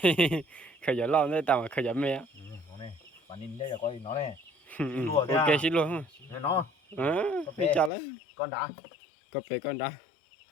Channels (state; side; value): drops out; right; at 7.9 s